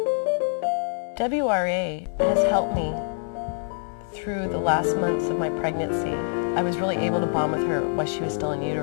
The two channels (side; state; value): right; silent; 62 dB below the other